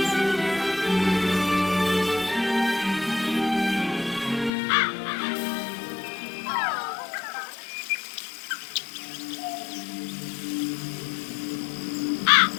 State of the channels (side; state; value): right; drops out; at 4.5 s